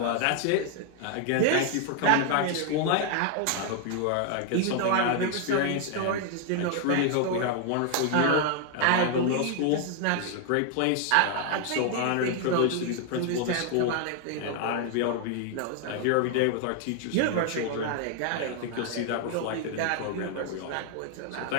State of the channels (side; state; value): both; different; correlation 0.00